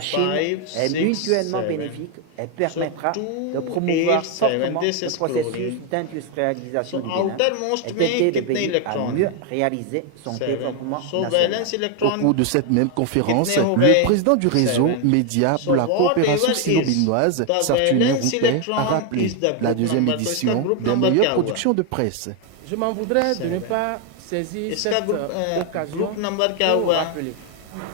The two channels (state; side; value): different; both; correlation 0.01